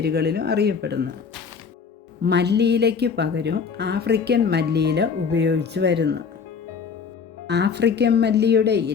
അറിയപ്പെടുന്നു. മല്ലിയിലയ്ക്ക് പകരം ആഫ്രിക്കൻ മല്ലിയില ഉപയോഗിച്ചു വരുന്നു. ആഫ്രിക്കൻ മല്ലിയുടെ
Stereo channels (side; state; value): right; quieter; 5.9 dB